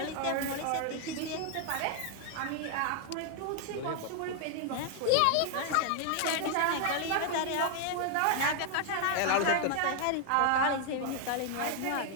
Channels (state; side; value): different; both; correlation 0.00